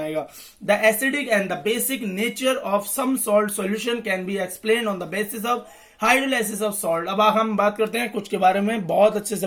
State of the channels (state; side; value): identical; both; correlation 1.00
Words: The acidic and the basic nature of some salt solution can be explain on the basis of hydrolysis of salt. अब हम बात करते हैं कुछ के बारे में, बहुत अच्छे से